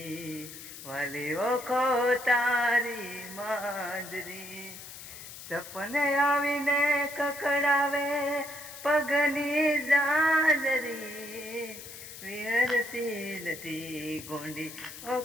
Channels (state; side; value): noise; left; hiss, 13 dB below the sound